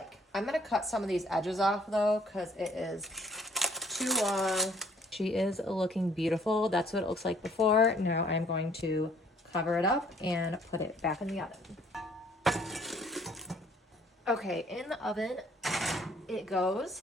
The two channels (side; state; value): both; normal; correlation 0.61